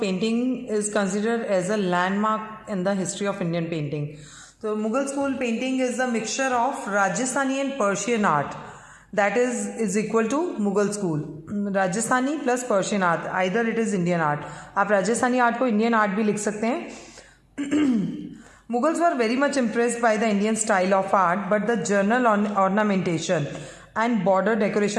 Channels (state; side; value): identical; both; correlation 1.00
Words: is considered as a landmark in the history of Indian painting. So, Mughal School painting is a mixture of Rajasthani and Persian art. That is equal to Mughal School. Rajasthani plus Persian art. Either it is Indian art. आप राजस्थानी आर्ट को इंडियन आर्ट भी लिख सकते हैं. Mughals were very much impressed by the Indian style of art, but the general ornamentation and border